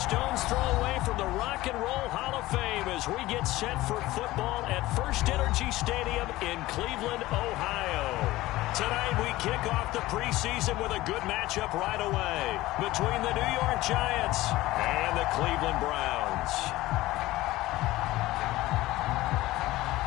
throw away from the Rock and Roll Hall of Fame as we get set for football at First Energy Stadium in Cleveland, Ohio. Tonight we kick off the preseason with a good matchup right away between the New York Giants and the Cleveland Browns.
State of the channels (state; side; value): quieter; right; 17.6 dB